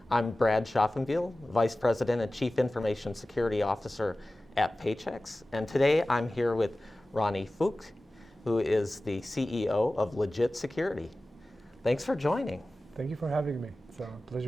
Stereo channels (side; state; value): both; normal; correlation 0.96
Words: I'm Brad Schaufenbuel, Vice President and Chief Information Security Officer at Paychex. And today I'm here with Roni Fuchs, who is the CEO of Legit Security. Thanks for joining. Thank you for having me. It's a